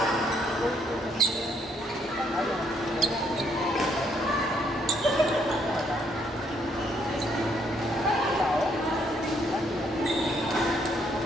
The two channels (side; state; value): both; normal; correlation 0.69